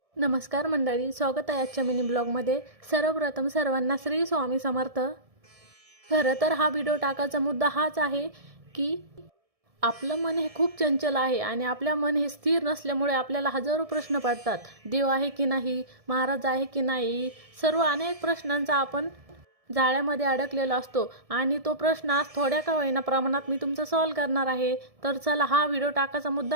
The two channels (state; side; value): late; left; 1.7 ms